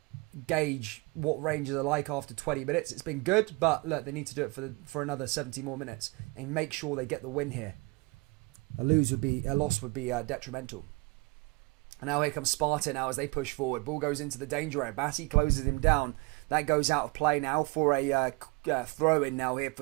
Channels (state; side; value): quieter; left; 26.3 dB